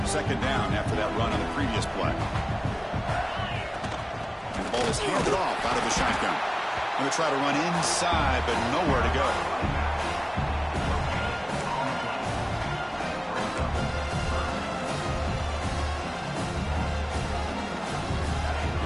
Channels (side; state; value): both; identical; correlation 1.00